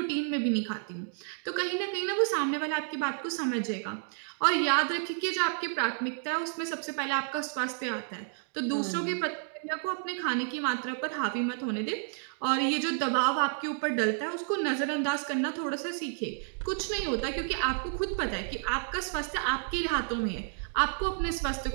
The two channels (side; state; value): left; silent; 57 dB below the other